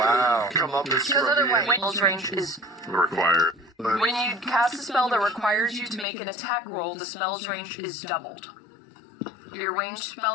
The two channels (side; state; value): right; drops out; at 6.1 s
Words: come up as Because otherwise, Wayne's range is required. when you cast a spell that requires you to make an attack roll, the spell's range is doubled. Your ranged